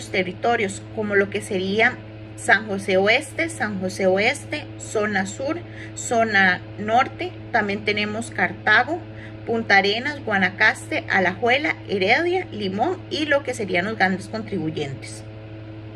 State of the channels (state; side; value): identical; both; correlation 1.00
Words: territorios, como lo que sería San José Oeste, zona sur, zona norte. También tenemos Cartago, Punta Arenas, Guanacaste, Alajuela, Heredia, Limón y lo que serían los grandes contribuyentes.